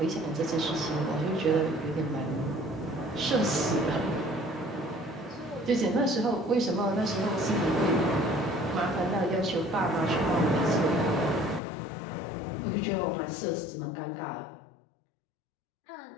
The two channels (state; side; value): drops out; right; at 11.6 s